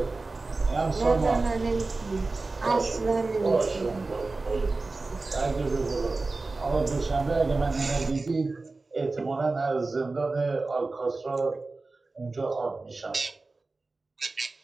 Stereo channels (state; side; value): quieter; left; 3.5 dB